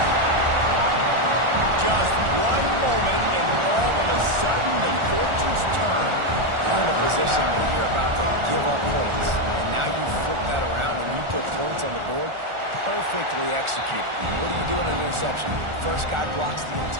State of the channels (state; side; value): late; left; 1.4 ms